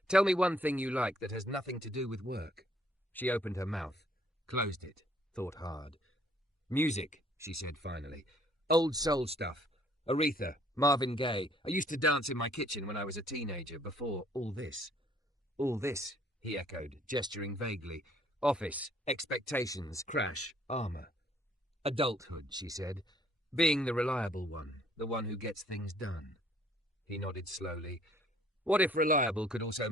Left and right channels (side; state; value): both; normal; correlation 0.62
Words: "tell me one thing you like that has nothing to do with work." She opened her mouth, closed it, thought hard. "Music," she said finally. "Old soul stuff. Aretha, Marvin Gaye. I used to dance in my kitchen when I was a teenager, before all this." "All this," he echoed, gesturing vaguely. "Office, expectations, crash, armor." "Adulthood," she said. "Being the reliable one, the one who gets things done." He nodded slowly. "What if reliable could also